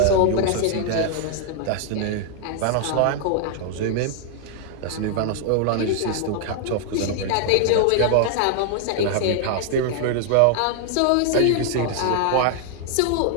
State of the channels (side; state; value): both; different; correlation 0.00